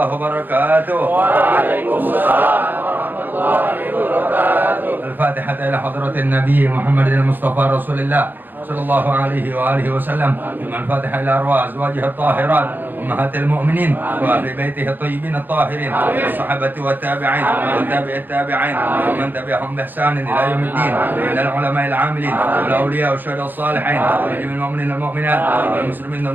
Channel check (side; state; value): left; late; 0.089 ms